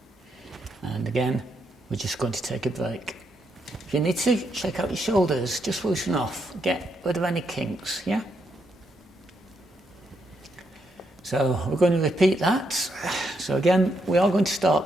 And again, we're just going to take a break. If you need to, shake out your shoulders, just loosen off, get rid of any kinks, yeah? So we're going to repeat that. So again, we are going to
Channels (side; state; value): both; normal; correlation 0.78